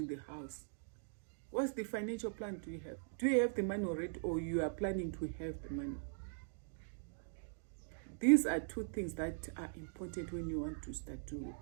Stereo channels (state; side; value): silent; left; digital silence